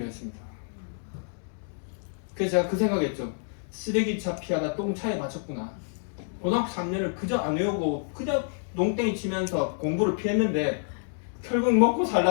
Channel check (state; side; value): silent; right; digital silence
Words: 했습니다. 그래서 제가 그 생각했죠. 쓰레기차 피하다 똥차에 맞췄구나. 고등학교 3년을 그저 안 외우고 그저 농땡이 치면서 공부를 피했는데 결국 먹고